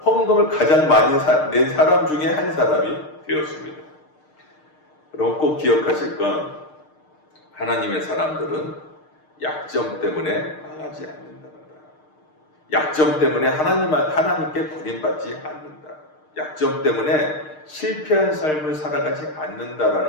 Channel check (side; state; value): right; late; 6.6 ms